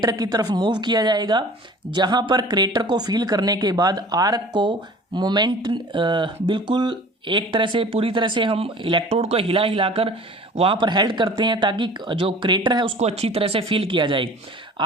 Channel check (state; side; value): normal; both; correlation 0.44